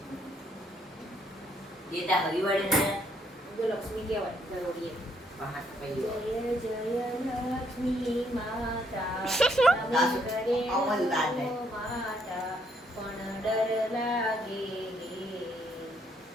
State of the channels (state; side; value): normal; both; correlation 0.71